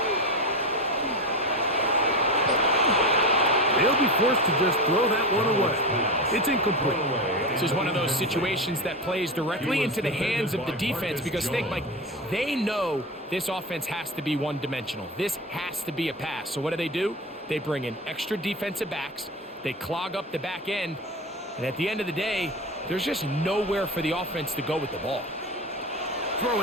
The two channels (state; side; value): normal; both; correlation 0.23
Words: They'll be forced to just throw that one away. It's incomplete. This is one of those situations that plays directly into the hands of the defense because think, Mike, they know this offense has to be one-dimensional. This has to be a pass. So what do? They bring in extra defensive backs. They clog up the back end. And at the end of the day, there's just nowhere for the offense to go with the ball.